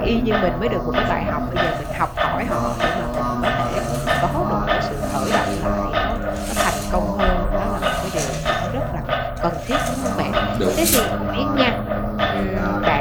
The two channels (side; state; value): both; identical; correlation 1.00